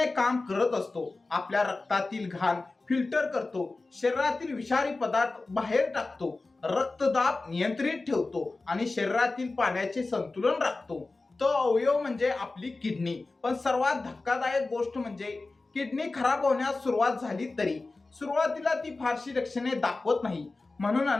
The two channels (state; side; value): quieter; right; 3.4 dB